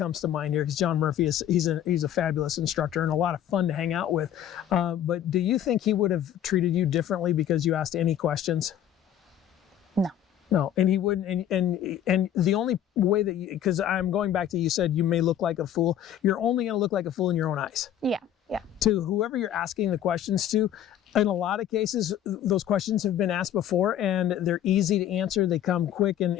to mind here, because John Murphy he's a fabulous instructor and a lot of fun to hang out with. But do you think he would have treated you differently because you asked any questions? No, and he wouldn't, and the only way that because I'm going back to, you said you may look like a fool. You're only going to look like a fool in your own eyes. Yeah. To whoever you're asking the questions to. In a lot of cases, those questions have been asked before and they're easy to answer. They come quick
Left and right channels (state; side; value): quieter; right; 10.5 dB